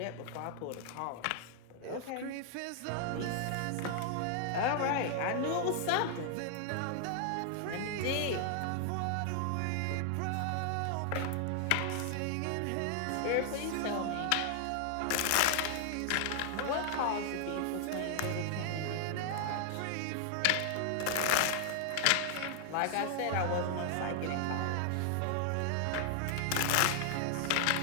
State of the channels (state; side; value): different; both; correlation 0.00